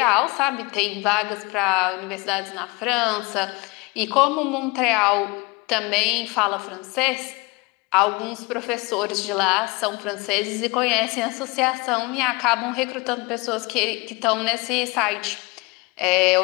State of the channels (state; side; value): quieter; right; 25.9 dB